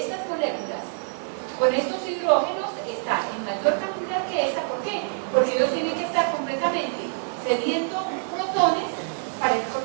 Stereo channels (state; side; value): silent; left; 61 dB below the other